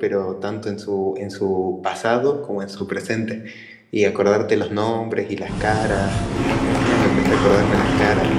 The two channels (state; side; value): identical; both; correlation 1.00